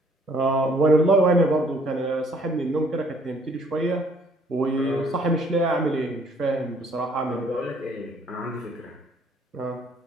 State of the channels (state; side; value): normal; both; correlation 0.61